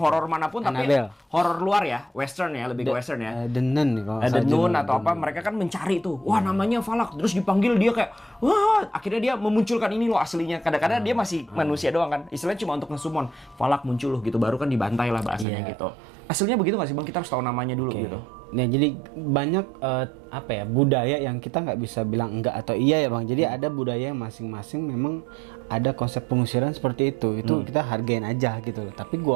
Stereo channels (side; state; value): left; drops out; at 15.5 s